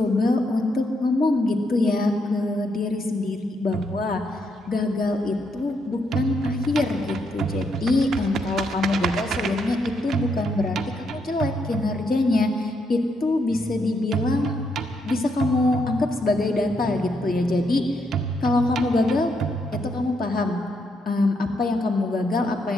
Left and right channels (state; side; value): normal; both; correlation 0.77